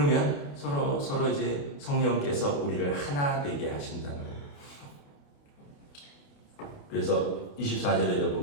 서로 이제 성령께서 우리를 하나 되게 하신다는 거예요. 그래서 24절에도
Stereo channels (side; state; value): right; late; 28 ms